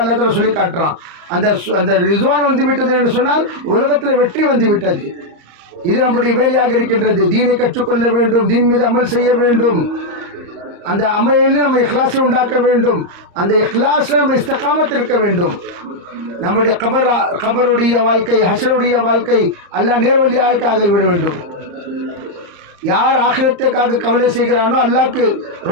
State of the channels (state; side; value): late; left; 35 ms